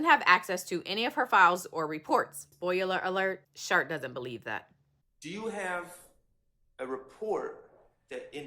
have access to any of her files or reports. Spoiler alert, Schardt doesn't believe that. Do you have a report that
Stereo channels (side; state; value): both; identical; correlation 1.00